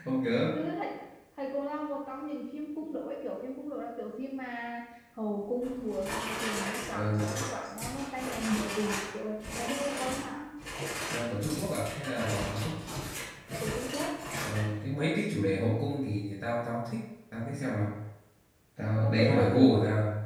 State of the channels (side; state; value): both; identical; correlation 1.00